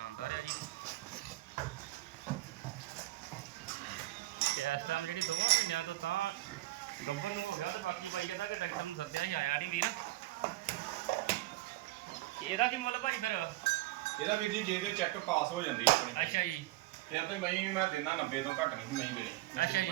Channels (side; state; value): left; quieter; 18.2 dB